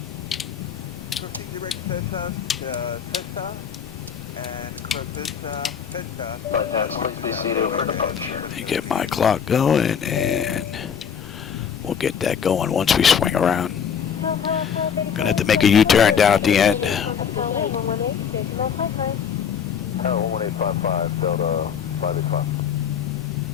Proceed direct Cessna, Cessna, and cross Cessna. Please be seated for departure. Let me get my clock going and we'll get that going once we swing around. Gonna have to make a U-turn down at the end. 1855 Delta 585.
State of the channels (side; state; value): right; quieter; 7.5 dB